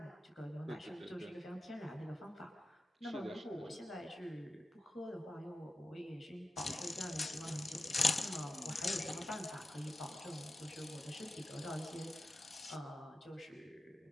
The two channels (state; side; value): normal; both; correlation 0.91